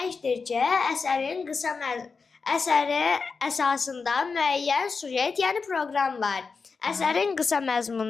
ki, əsəri əsasında müəyyən sujet, yəni proqram var. Əsərin qısa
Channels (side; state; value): right; quieter; 4.8 dB